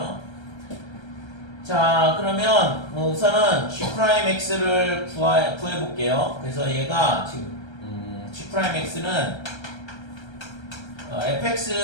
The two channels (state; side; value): late; right; 1.3 ms